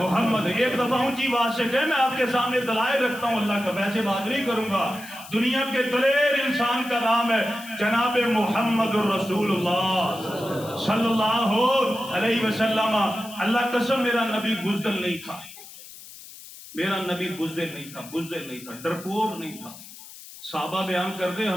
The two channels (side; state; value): left; noise; hiss, 17 dB below the sound